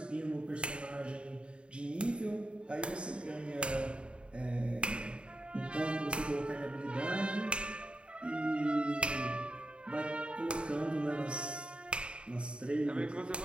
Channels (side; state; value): left; late; 0.055 ms